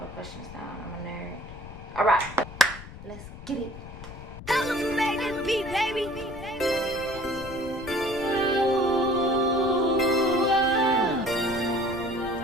questions down. I'm a nerd. Alright. Let's get it.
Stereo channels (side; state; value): left; noise; rumble, 14 dB below the sound